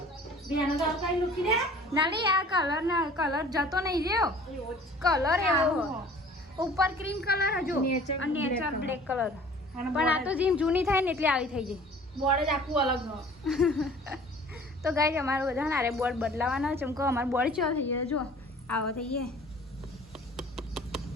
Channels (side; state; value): both; normal; correlation 0.48